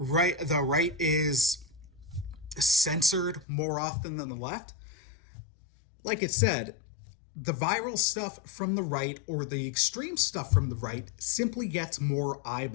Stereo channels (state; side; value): drops out; right; at 3.5 s